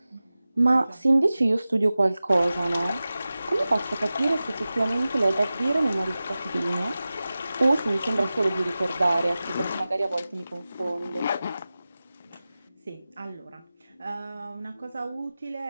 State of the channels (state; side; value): inverted; both; correlation -0.96